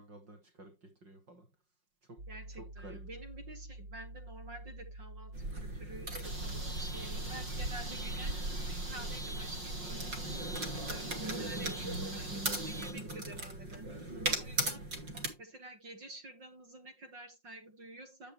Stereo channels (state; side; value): late; left; 5.5 ms